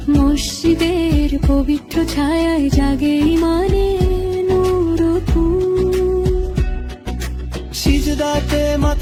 মসজিদের পবিত্র ছায়ায় জাগে ইমানের নূর ও ফুল। সিজদাতে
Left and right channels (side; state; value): both; identical; correlation 1.00